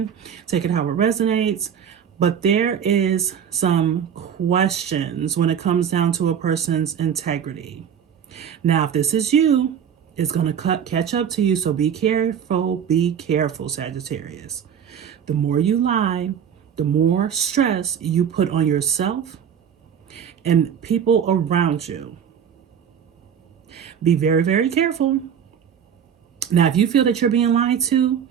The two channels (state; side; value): quieter; left; 8.2 dB